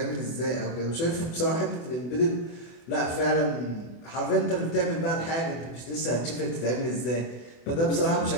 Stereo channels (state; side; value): late; right; 24 ms